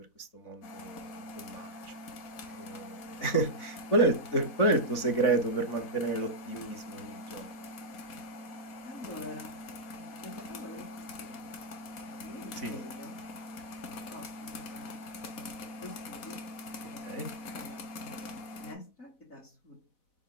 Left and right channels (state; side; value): late; right; 4.0 ms